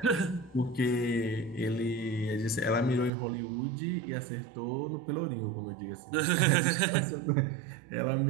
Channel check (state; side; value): drops out; left; at 3.1 s